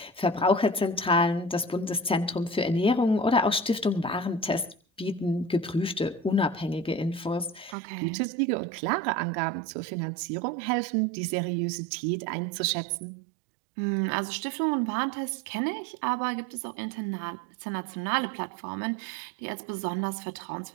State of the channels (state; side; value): drops out; left; at 7.8 s